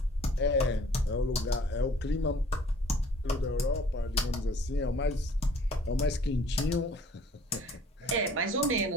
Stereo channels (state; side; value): normal; both; correlation 0.54